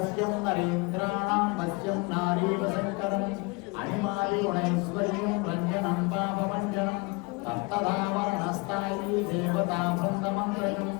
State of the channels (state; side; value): quieter; right; 27.2 dB